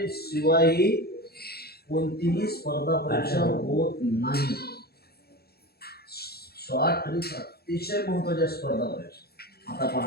शिवाय कोणतीही स्पर्धा परीक्षा होत नाही. शॉर्ट ट्रिक्स अतिशय महत्वाच्या स्पर्धा परीक्षा. आता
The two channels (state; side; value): late; right; 0.46 ms